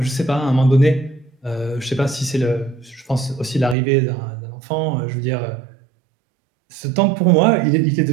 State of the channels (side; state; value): left; drops out; at 3.8 s